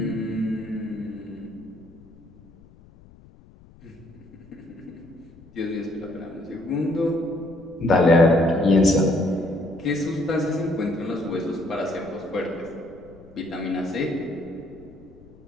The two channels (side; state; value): left; noise; rumble, 24 dB below the sound